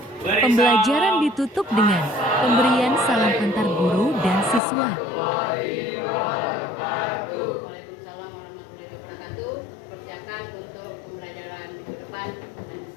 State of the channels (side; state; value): right; drops out; at 4.6 s